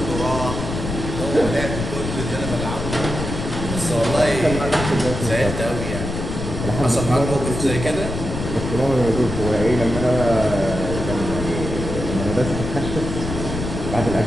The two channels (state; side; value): noise; left; rumble, 5 dB below the sound